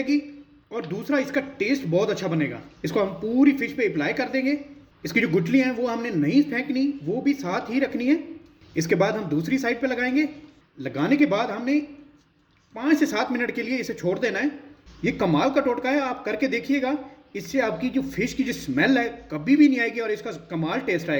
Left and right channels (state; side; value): identical; both; correlation 1.00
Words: और दूसरा इसका टेस्ट बहुत अच्छा बनेगा। इसको हम पूरी फिश पे अप्लाई कर देंगे। इसकी जो गुठलियाँ हैं वो हमने नहीं फेंकनी, वो भी साथ ही रखनी है। इसके बाद हम दूसरी साइड पे लगाएंगे। लगाने के बाद हमने 5 से 7 मिनट के लिए इसे छोड़ देना है। ये कमाल का टोटका है, आप करके देखिएगा। इससे आपकी जो फिश की जो स्मेल है कभी भी नहीं आएगी और इसका कमाल टेस्ट